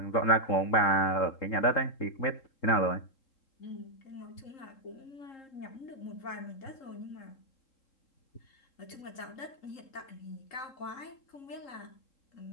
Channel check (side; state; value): right; late; 3.7 ms